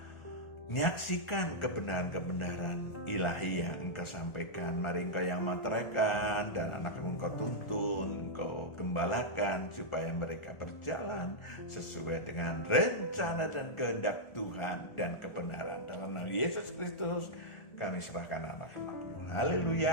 menyaksikan kebenaran-kebenaran ilahi yang Engkau sampaikan, mari Engkau yang meteraikan dan anak-anakmu Engkau tuntun, Engkau gembalakan supaya mereka berjalan sesuai dengan rencana dan kehendak Tuhan dan kebenaran. Dalam nama Yesus Kristus kami serahkan anak-anakmu.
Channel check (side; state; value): right; late; 1.4 ms